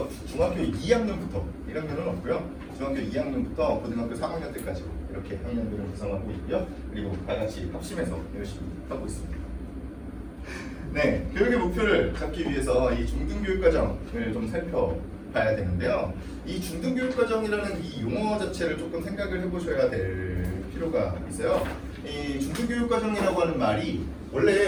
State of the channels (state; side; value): identical; both; correlation 1.00